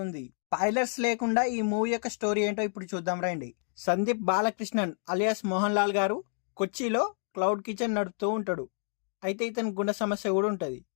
స్పాయిలర్స్ లేకుండా ఈ మూవీ యొక్క స్టోరీ ఏంటో ఇప్పుడు చూద్దాం రండి. సందీప్ బాలకృష్ణన్ అలియాస్ మోహన్ లాల్ గారు కొచ్చిలో క్లౌడ్ కిచెన్ నడుపుతూ ఉంటాడు. అయితే ఇతని గుండె సమస్య కూడా ఉంటుంది.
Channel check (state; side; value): silent; right; 58 dB below the other